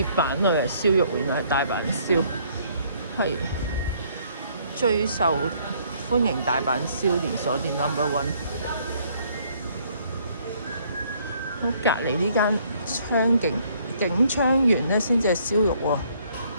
板度有燒肉，原來係大阪燒，係最受歡迎大阪燒連鎖店 No.1。咁隔離呢間景昌園咧，先至係燒肉喎。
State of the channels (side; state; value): both; inverted; correlation -0.64